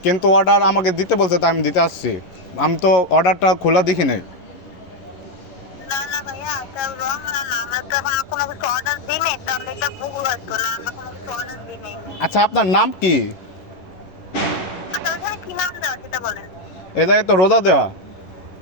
কিন্তু অর্ডার আমাকে দিতে বলছে, তাই আমি দিতে আসছি। আমি তো অর্ডারটা খোলা দেখি নাই। আচ্ছা, আপনার নাম কি? এ জায়গায় তো রোদা দেওয়া।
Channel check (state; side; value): late; right; 11 ms